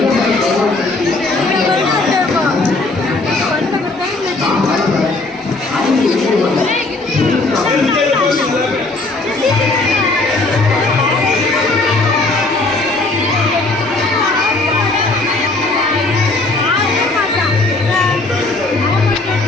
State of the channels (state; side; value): quieter; right; 3.1 dB